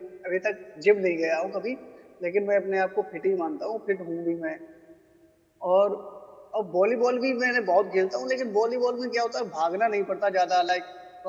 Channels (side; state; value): both; identical; correlation 1.00